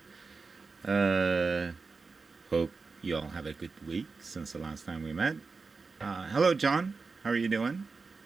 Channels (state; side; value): quieter; left; 4.4 dB